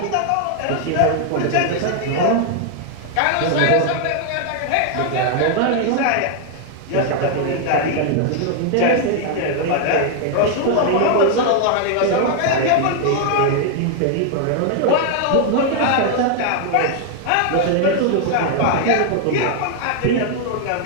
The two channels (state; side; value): different; both; correlation 0.00